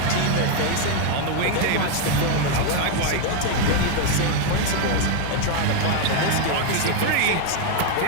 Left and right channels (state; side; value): different; both; correlation 0.01